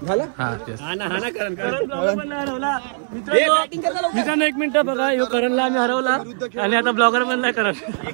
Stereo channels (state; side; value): silent; left; digital silence